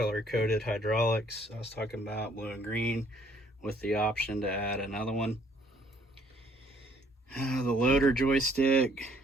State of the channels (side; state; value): both; normal; correlation 0.63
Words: hydraulics I was talking about, blue and green, with the option to add another one. The loader joystick